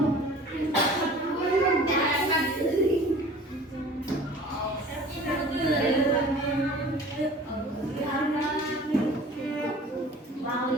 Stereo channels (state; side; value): normal; both; correlation 0.45